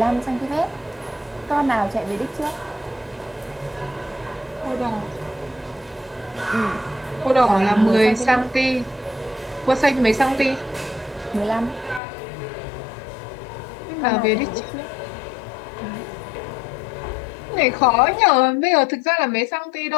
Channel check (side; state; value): right; drops out; at 12.0 s